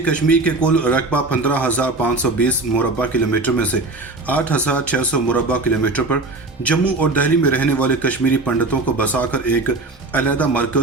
कश्मीर के कुल रकबा 15,520 मुरबा किलोमीटर में से 8,600 मुरबा किलोमीटर पर जम्मू और दिल्ली में रहने वाले कश्मीरी पंडितों को बसाकर एक अलहदा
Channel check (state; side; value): quieter; left; 3.1 dB